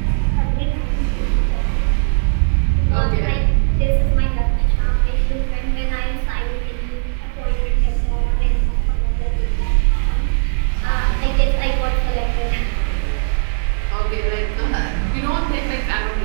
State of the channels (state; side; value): silent; left; digital silence